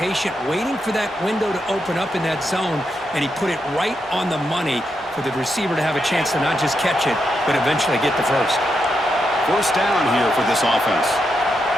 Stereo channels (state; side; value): normal; both; correlation 0.83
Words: waiting for that window to open up in that zone, and he put it right on the money for the receiver to have a chance to not just catch it, but eventually get the first. First down here for this offense.